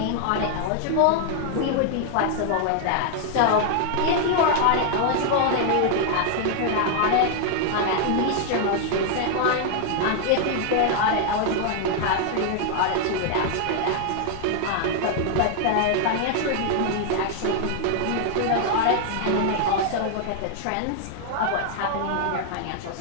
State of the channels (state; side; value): different; both; correlation 0.00